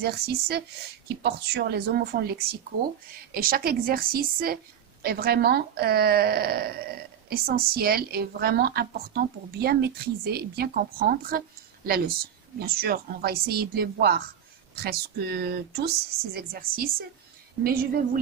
qui portent sur les homophones lexicaux. Et chaque exercice est vraiment essentiel et vraiment important pour bien maîtriser et bien comprendre la leçon. Bien sûr, on va essayer de les voir presque tous, ces exercices. Mais je vais vous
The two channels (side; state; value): left; quieter; 9.0 dB